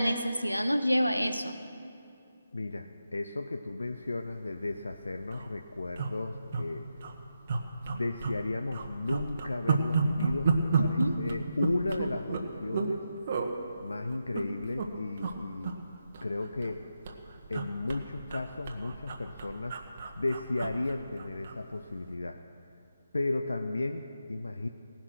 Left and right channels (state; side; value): inverted; both; correlation -0.86